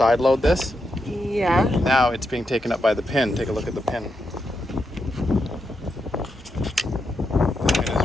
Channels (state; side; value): normal; both; correlation 0.84